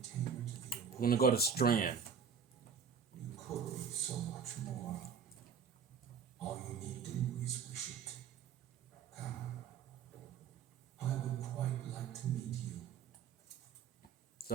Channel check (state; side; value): quieter; left; 6.5 dB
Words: We're gonna go to Strand. You could be so much more. All you need do is wish it. Come. I would quite like to meet you.